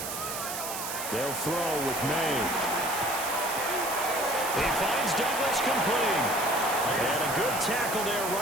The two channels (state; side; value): noise; right; hiss, 6 dB below the sound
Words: They'll throw with May. He finds Douglas complete. And a good tackle there